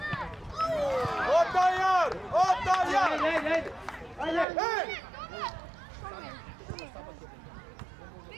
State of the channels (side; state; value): left; drops out; at 4.5 s